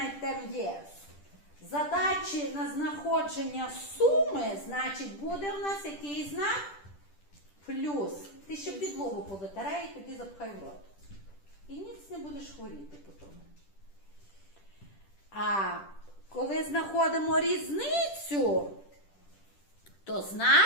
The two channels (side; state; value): right; late; 10 ms